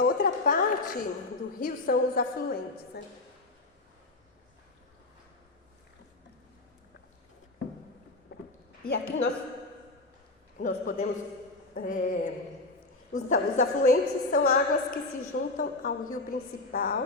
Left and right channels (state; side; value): quieter; right; 3.1 dB